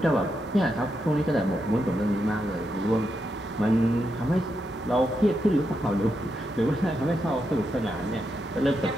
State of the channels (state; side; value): normal; both; correlation 0.84